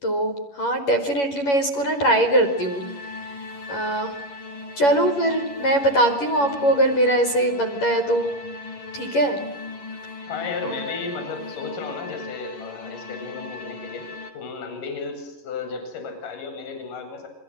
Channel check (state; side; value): late; right; 11 ms